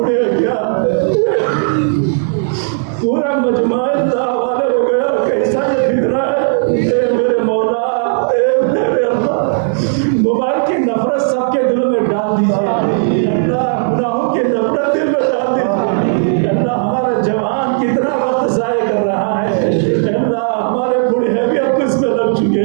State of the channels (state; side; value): silent; left; digital silence